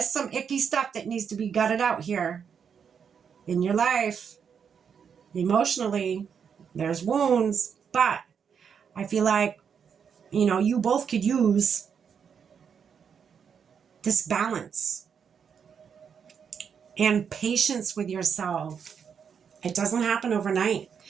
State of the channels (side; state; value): left; quieter; 7.1 dB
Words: some icky stuff that needs to be gutted out here in your life. Emotionally, there's wounds, but I feel like, you know, you both could use this balance and patience with yourself. It doesn't happen overnight.